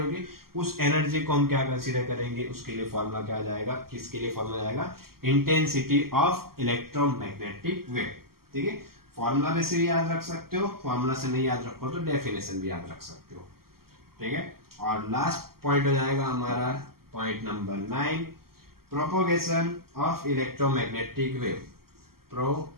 उस एनर्जी को हम क्या कंसीडर करेंगे, उसके लिए फॉर्मूला क्या आ जाएगा, किसके लिए फॉर्मूला जाएगा, इंटेंसिटी ऑफ इलेक्ट्रोमैग्नेटिक वेव। ठीक है, फॉर्मूला में से भी याद रख सकते हो, फॉर्मूला से नहीं याद रखो तो डेफिनेशन भी याद रख सकते हो। ठीक है, और लास्ट पॉइंट हो जाएगा हमारा point number 9, propagation of electromagnetic wave.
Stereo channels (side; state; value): left; late; 0.93 ms